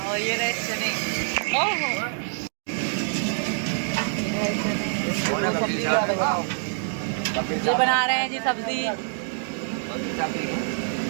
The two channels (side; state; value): left; silent; digital silence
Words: और ये रहे चने। ओहो, ये बना रहे हैं जी सब्जी।